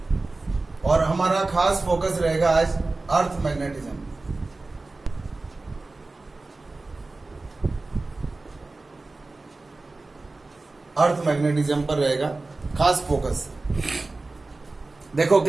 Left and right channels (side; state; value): left; quieter; 3.3 dB